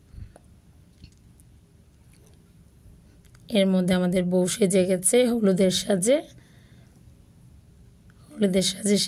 এর মধ্যে আমাদের বউ সেজে গেছে, হলুদের সাজে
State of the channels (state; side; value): identical; both; correlation 1.00